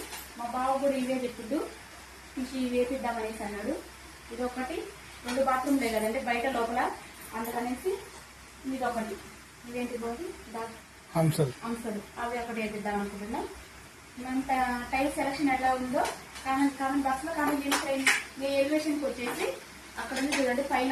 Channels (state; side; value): identical; both; correlation 1.00